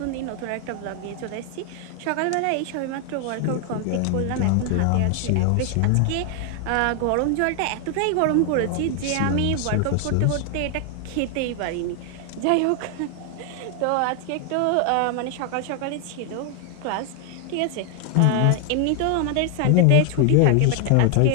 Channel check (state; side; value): different; both; correlation 0.00